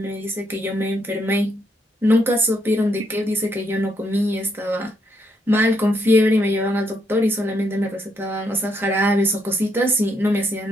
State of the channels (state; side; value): normal; both; correlation 0.75